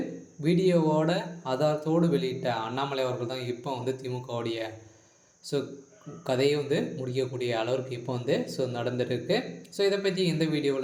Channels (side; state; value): both; identical; correlation 1.00